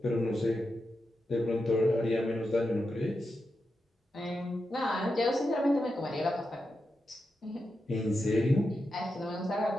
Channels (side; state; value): both; normal; correlation 0.88